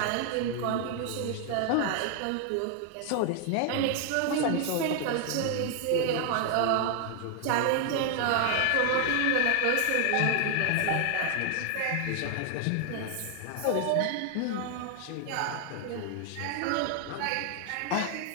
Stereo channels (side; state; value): both; different; correlation 0.00